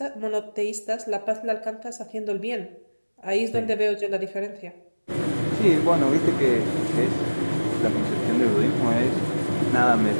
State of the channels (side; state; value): both; inverted; correlation -1.00